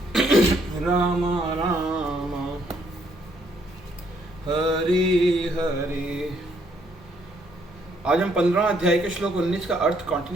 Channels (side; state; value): both; normal; correlation 0.70